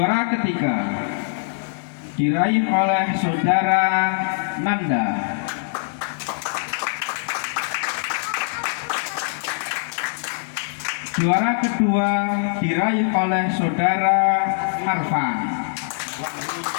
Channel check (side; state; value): right; silent; 64 dB below the other